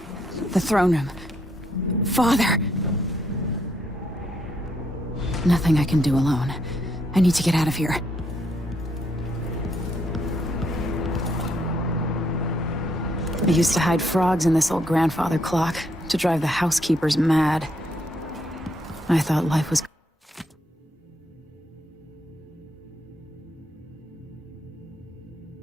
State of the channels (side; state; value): both; normal; correlation 0.74